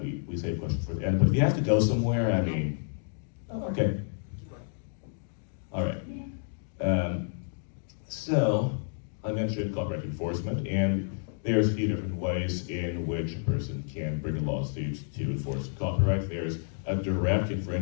we save questions for the end, but if you have to go somewhere, I mean, okay. Keep going. All right. So, I mentioned copyright enforcement, and there's a few different ways in which a person can bring a lawsuit to enforce copyright. There's a direct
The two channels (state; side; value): silent; right; digital silence